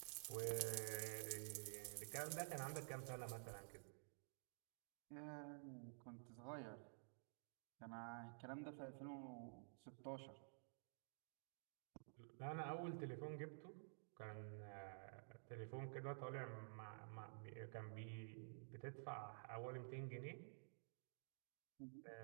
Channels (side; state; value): left; silent; digital silence